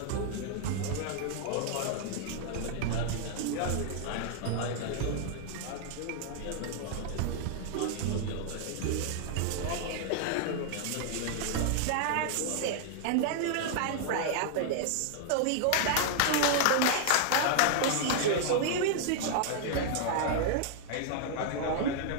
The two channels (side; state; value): both; different; correlation 0.00